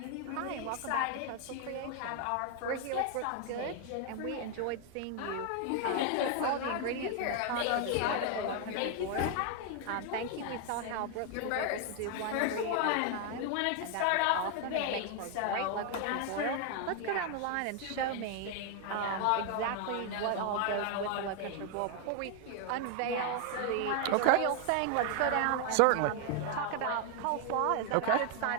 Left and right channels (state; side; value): different; both; correlation 0.01